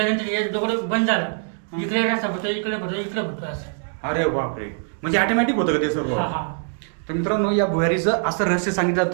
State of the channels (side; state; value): left; silent; digital silence